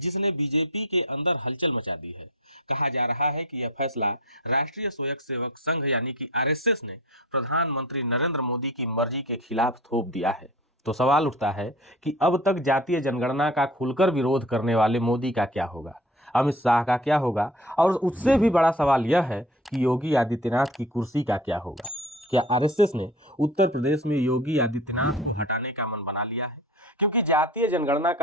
बीजेपी के अंदर हलचल मचा दी है। कहा जा रहा है कि यह फैसला राष्ट्रीय स्वयंसेवक संघ यानी कि आरएसएस ने प्रधानमंत्री नरेंद्र मोदी की मर्जी के खिलाफ थोप दिया है। तो सवाल उठता है कि अब तक जातीय जनगणना का खुलकर विरोध करने वाले मोदी का क्या होगा, अमित शाह का क्या होगा, और उससे भी बड़ा सवाल यह है कि योगी आदित्यनाथ की कुर्सी का क्या होगा। क्या आरएसएस ने उत्तर प्रदेश में योगी आदित्यनाथ को हटाने का मन बना लिया है? क्योंकि जातीय जनगणना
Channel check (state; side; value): normal; both; correlation 0.38